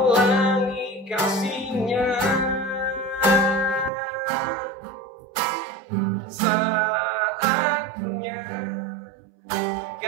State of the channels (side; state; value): left; drops out; at 3.9 s